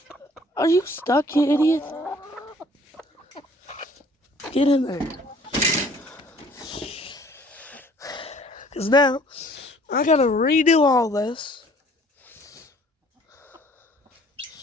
Are you stuck, you idiot? Get in there. Because now, I gotta redo all this.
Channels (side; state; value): both; normal; correlation 0.56